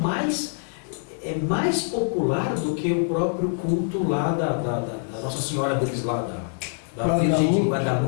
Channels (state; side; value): silent; right; digital silence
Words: popular do que o próprio culto lá da Nossa Senhora deles lá, da Virgem de